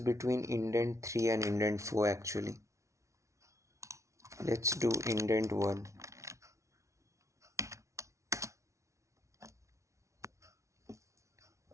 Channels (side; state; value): left; late; 0.14 ms